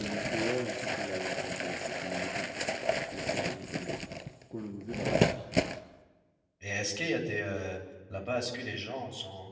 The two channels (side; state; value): both; identical; correlation 1.00